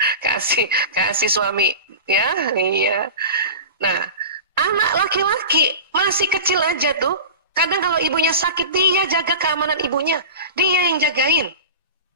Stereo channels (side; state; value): both; inverted; correlation -0.31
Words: kasih suami ya. Iya. Nah anak laki-laki masih kecil aja tuh. Kadang kalau ibunya sakit, dia jaga keamanan ibunya. Dia yang jagain.